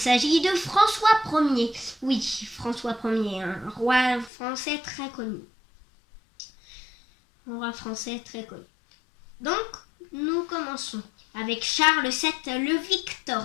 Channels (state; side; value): drops out; right; at 4.3 s